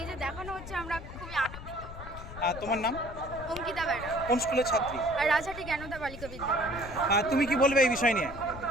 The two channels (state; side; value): noise; left; rumble, 12 dB below the sound